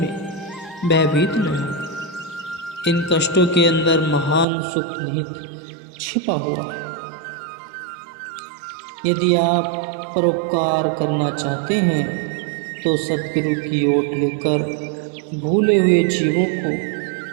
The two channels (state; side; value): drops out; left; at 4.5 s